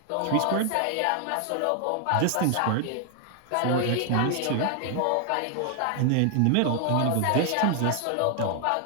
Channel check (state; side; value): different; both; correlation 0.00